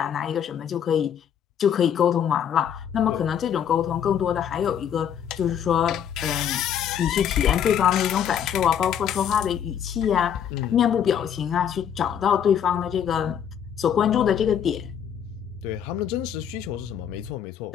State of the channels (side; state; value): right; quieter; 8.8 dB